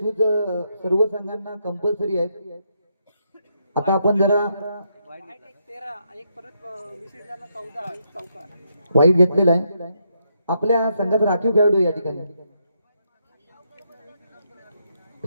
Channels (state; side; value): inverted; both; correlation -0.78